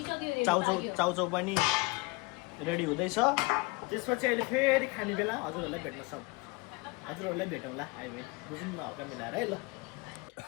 चाउचाउ पनि रेडी हुँदैछ त्यसपछि अहिले फेरि खाने बेला हजुरहरूलाई भेटौँला हामी बुझौँ न हल्का मिलाएर है ल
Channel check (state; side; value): quieter; right; 26.1 dB